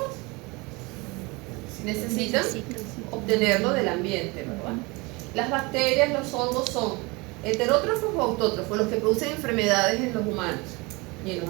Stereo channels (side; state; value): left; quieter; 25.7 dB